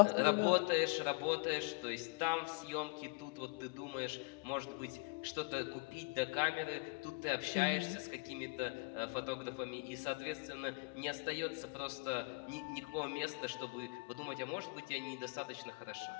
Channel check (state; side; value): quieter; right; 33.5 dB